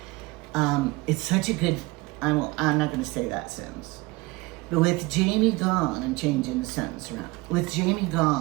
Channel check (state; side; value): quieter; left; 22.9 dB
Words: It's such a good, I'm not gonna say that sentence. But with Jamie gone, I'm changing the sentence around. With Jamie